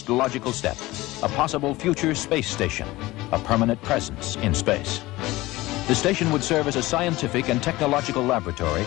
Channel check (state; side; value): quieter; right; 19.0 dB